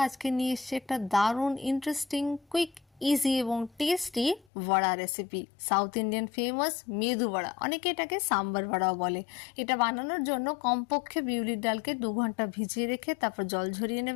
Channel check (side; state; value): right; drops out; at 4.5 s